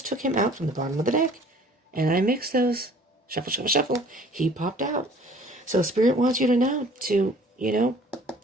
took him out from the bottom of the deck. And I mixed those. Shuffle, shuffle, shuffle. He popped out. So Spirit wants you to know to,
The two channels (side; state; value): both; normal; correlation 0.52